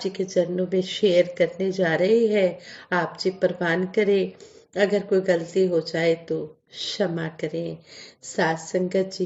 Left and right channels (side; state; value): both; identical; correlation 1.00